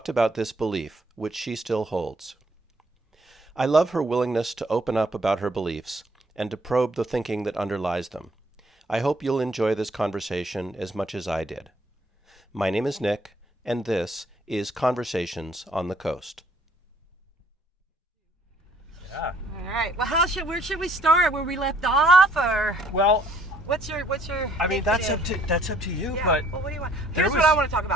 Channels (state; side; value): normal; both; correlation 0.62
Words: about this belief, which she still holds. I love her willingness to open up about her beliefs and to probe the thinking that underlies them. I hope you'll enjoy this conversation as much as I did. My name is Nick, and this is Conversations on the Coast. Yeah. All right. Well, where should we start? Where we left off, or Well, what's your? I mean, that's up to you. Yeah. But Well, what do you want? Here's what I want to talk